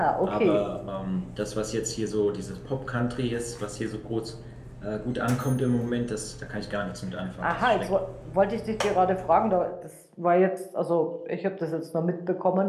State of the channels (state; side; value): identical; both; correlation 1.00